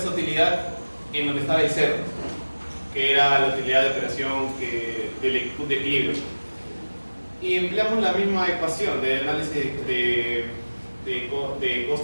utilidad en donde estaba el cero, que era la utilidad de operación del punto de equilibrio. Y empleamos la misma ecuación de análisis de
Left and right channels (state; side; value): inverted; both; correlation -1.00